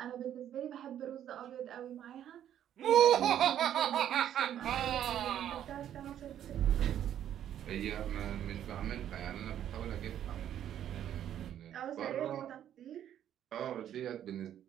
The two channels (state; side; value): quieter; left; 10.6 dB